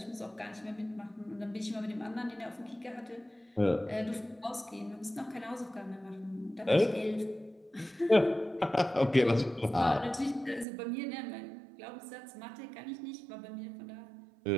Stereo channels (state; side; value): drops out; left; at 10.7 s